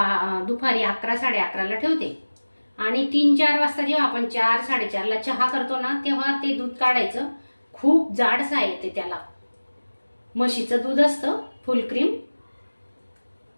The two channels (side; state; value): both; inverted; correlation -1.00